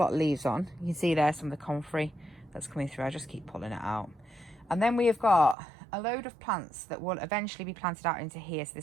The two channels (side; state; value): left; drops out; at 5.6 s